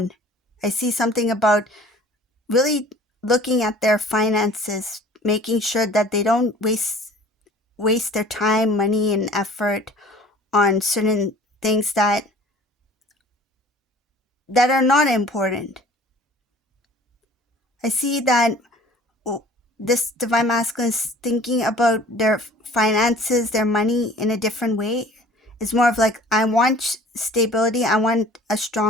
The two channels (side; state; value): both; normal; correlation 0.49